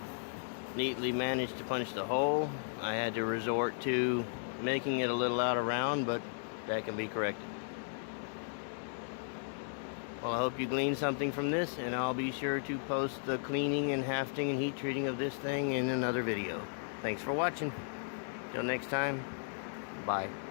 Neatly managed to punch the hole. I had to resort to making it a little out of round, but that can be corrected. Well, I hope you gleaned something from this, and I'll be sure to post the cleaning and hafting and heat treating of this thing in another video. Thanks for watching. Till next time, bye.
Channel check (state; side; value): silent; right; digital silence